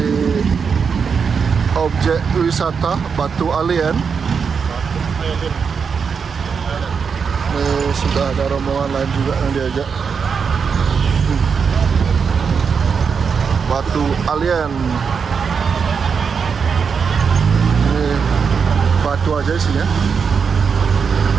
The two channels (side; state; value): left; quieter; 6.1 dB